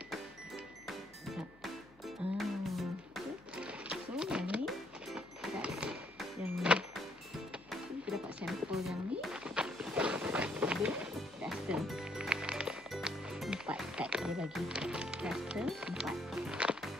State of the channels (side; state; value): left; noise; hum, 27 dB below the sound